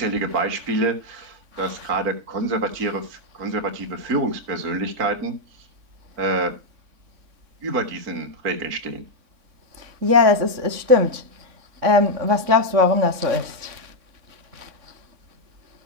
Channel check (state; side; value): late; left; 3.6 ms